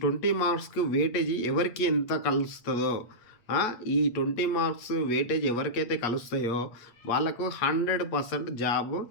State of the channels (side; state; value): right; late; 8.5 ms